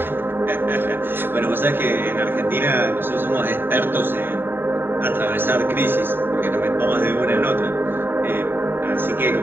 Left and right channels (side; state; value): left; late; 0.10 ms